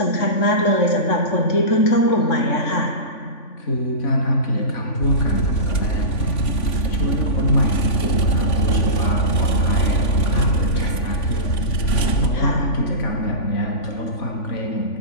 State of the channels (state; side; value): late; right; 3.5 ms